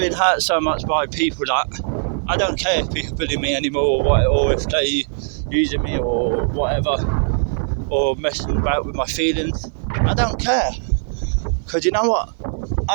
hurt so much by people that I don't care if people bully me anymore, or if they using me or whatever, or messing about with my feelings. I don't care, because you know what?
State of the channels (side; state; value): left; silent; 56 dB below the other